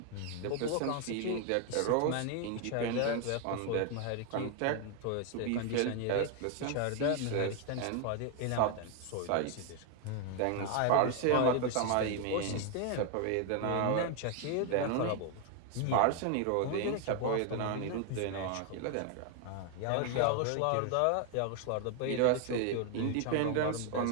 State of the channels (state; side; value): different; both; correlation 0.01